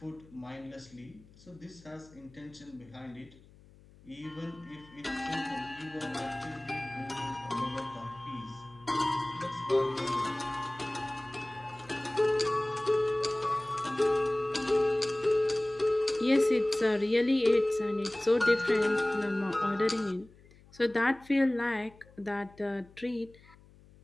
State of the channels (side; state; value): left; noise; hum, 25 dB below the sound